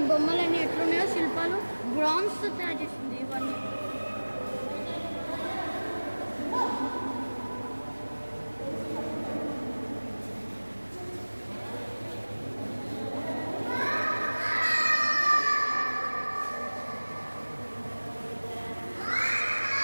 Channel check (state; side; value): inverted; both; correlation -1.00